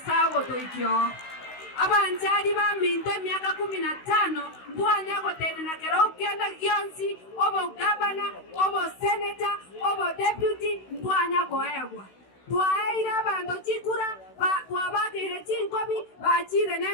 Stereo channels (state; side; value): late; right; 16 ms